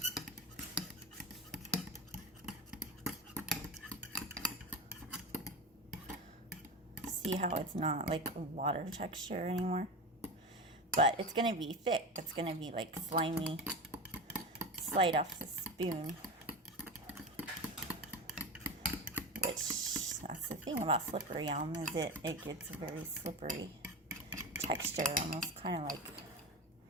See how it's not like water texture anymore, but it's gonna be thick. It's gonna be like slimy, slide off the spoon, which that's the thing about Slippery Elm, is it gets a very slippery texture, almost kind of like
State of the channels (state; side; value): normal; both; correlation 0.24